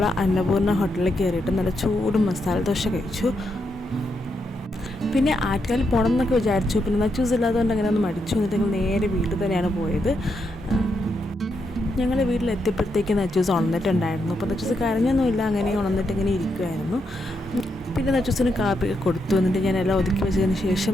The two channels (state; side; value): normal; both; correlation 0.81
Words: അന്നപൂർണ്ണ ഹോട്ടലിൽ കയറിയിട്ട് നല്ല ചൂട് മസാല ദോശ കഴിച്ചു. പിന്നെ ആറ്റുകാലിൽ പോകണം എന്നൊക്കെ വിചാരിച്ചു. പിന്നെ നച്ചൂസ് ഇല്ലാത്തതുകൊണ്ട് അങ്ങനെ ഒന്ന് മടിച്ചു. എന്നിട്ട് ഞങ്ങൾ നേരെ വീട്ടിൽ തന്നെയാണ് പോയത്. ഞങ്ങൾ വീട്ടിലെത്തിയപ്പോഴത്തേക്ക് നച്ചൂസ് ഉണർന്നിട്ടുണ്ടായിരുന്നു. അപ്പോൾ നച്ചൂസ് കരഞ്ഞൊന്നുമില്ല, അങ്ങനെ ഉണർന്നിട്ട് ഇങ്ങനെ ഇരിക്കുമായിരുന്നു. പിന്നെ നച്ചൂസിന് കാപ്പിയൊക്കെ കൊടുത്തു. എന്നിട്ട് ഞാൻ എല്ലാം ഒതുക്കി വെച്ചതിന് ശേഷം